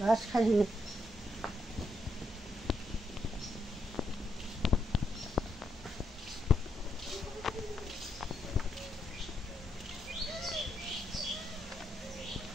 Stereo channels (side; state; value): both; normal; correlation 0.79